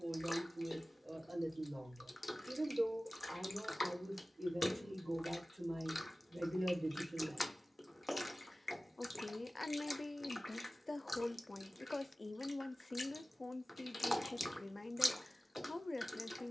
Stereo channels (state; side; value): normal; both; correlation 0.97